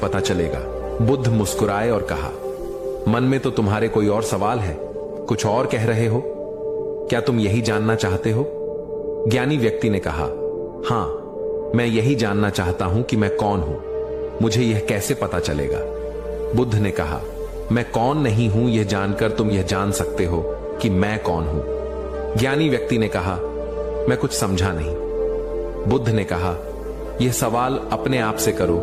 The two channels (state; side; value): identical; both; correlation 1.00